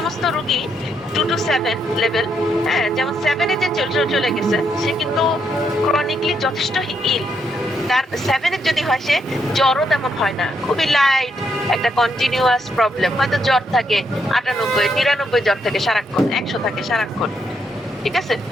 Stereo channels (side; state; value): both; normal; correlation 0.77